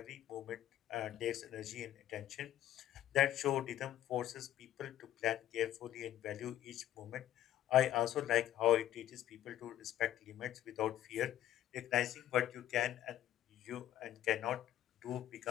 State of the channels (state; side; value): quieter; right; 12.4 dB